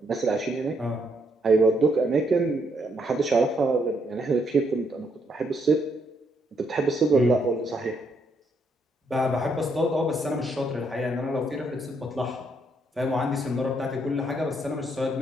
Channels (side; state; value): both; normal; correlation 0.74